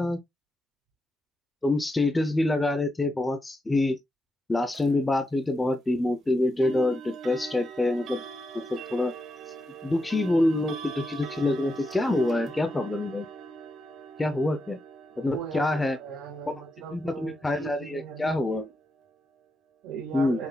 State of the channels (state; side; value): normal; both; correlation 0.86